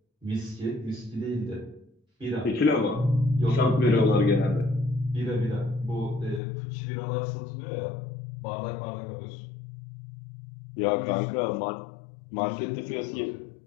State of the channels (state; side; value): drops out; right; at 6.4 s